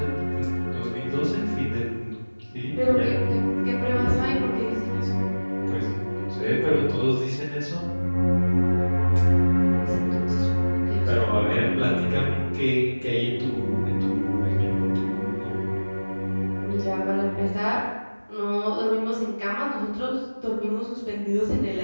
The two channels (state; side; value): inverted; both; correlation -1.00